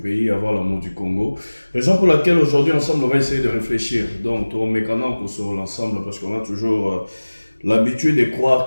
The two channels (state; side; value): inverted; both; correlation -1.00